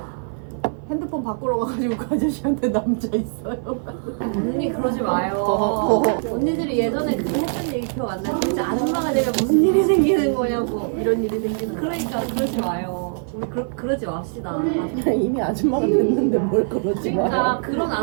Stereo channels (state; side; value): silent; left; 56 dB below the other